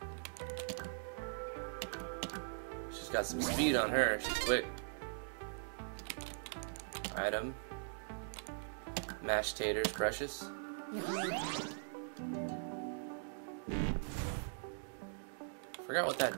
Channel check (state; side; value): silent; left; digital silence